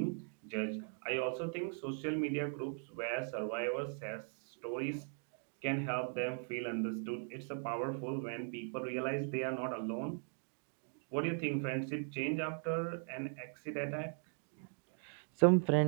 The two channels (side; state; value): left; silent; 52 dB below the other